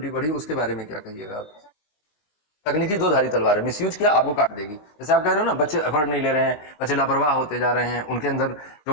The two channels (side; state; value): right; late; 19 ms